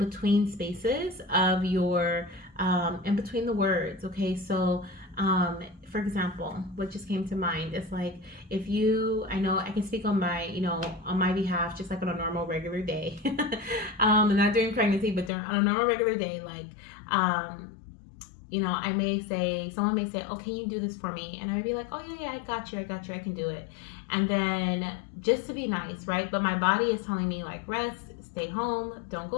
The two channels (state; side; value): drops out; right; at 15.3 s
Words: spaces of your, in between the words, okay? So, for example, what just came to mind is like, I know I can speak on my behalf, just like on a normal regular day, not during pregnancy, but on a normal regular day, like, someone may say, oh, can you do this for me? And I'd be like, oh yeah, I got you, I can do it. And then just to be nice, right? But my body is telling me like, rest, stay home, don't